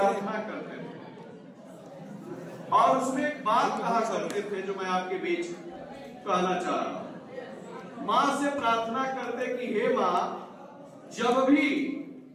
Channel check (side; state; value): both; identical; correlation 1.00